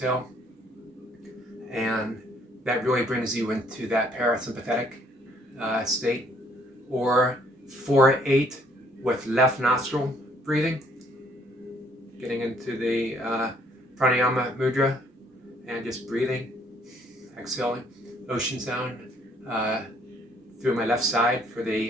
and that really brings you into that parasympathetic state. Or 4-8 with left nostril breathing, getting into the pranayama mudra and just breathing, exhaling, ocean sound through my left side for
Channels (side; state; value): both; normal; correlation 0.65